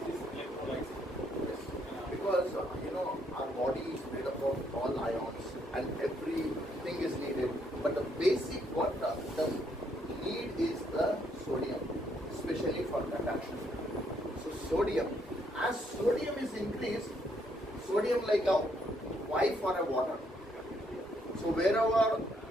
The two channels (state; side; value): normal; both; correlation 0.72